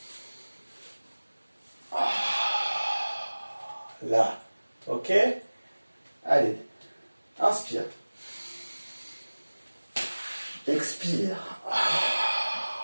Là, ok? Allez, inspire. Expire.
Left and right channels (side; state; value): both; inverted; correlation -1.00